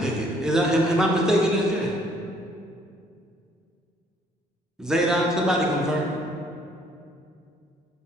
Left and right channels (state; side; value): normal; both; correlation 0.63